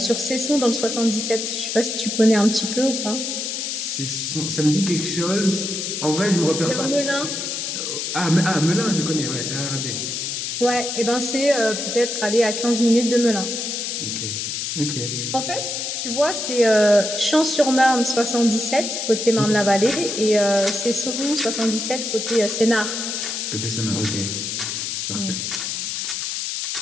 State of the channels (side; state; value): left; noise; hiss, 3 dB below the sound